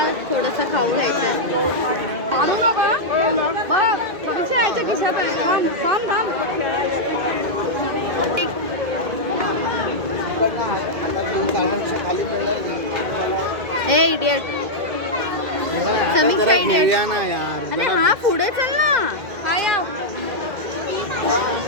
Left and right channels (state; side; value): late; left; 2.1 ms